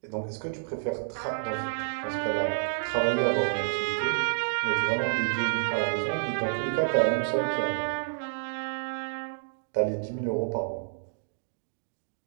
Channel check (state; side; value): silent; left; digital silence